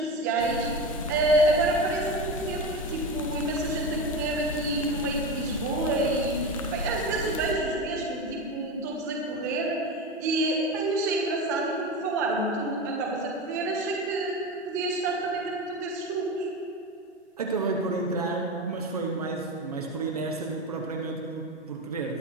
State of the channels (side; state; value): both; normal; correlation 0.22